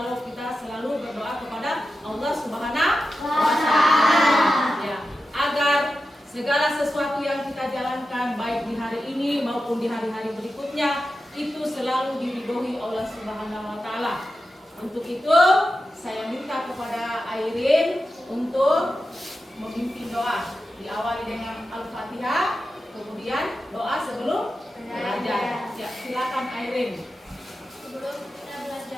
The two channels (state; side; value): normal; both; correlation 0.91